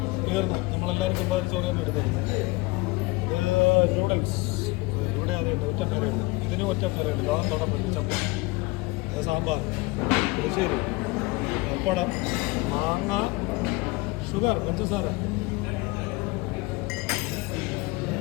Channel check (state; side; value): quieter; right; 23.8 dB